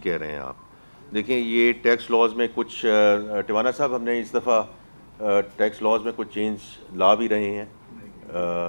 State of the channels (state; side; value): inverted; both; correlation -1.00